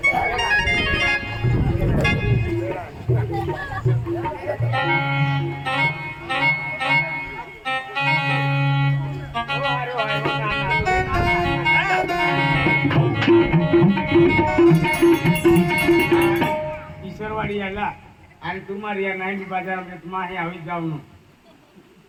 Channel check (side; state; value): both; identical; correlation 1.00